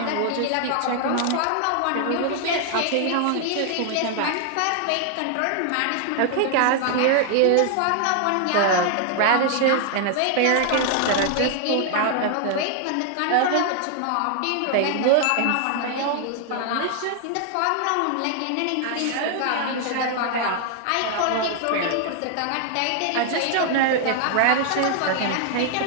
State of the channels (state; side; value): different; both; correlation 0.00